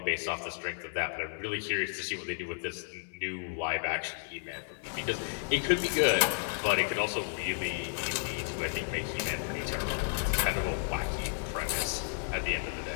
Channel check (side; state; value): right; silent; digital silence